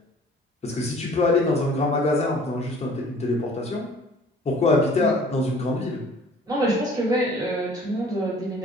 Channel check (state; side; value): normal; both; correlation 0.51